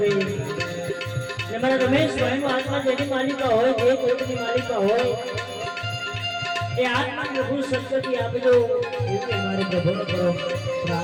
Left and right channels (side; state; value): both; identical; correlation 1.00